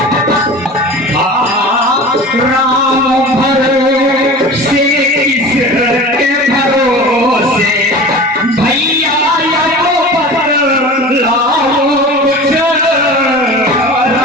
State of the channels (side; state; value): both; normal; correlation 0.35